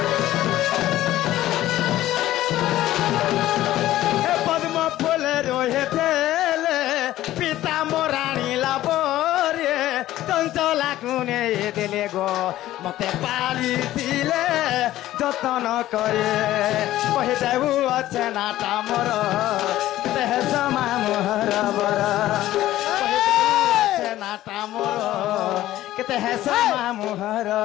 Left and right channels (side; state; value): right; quieter; 14.5 dB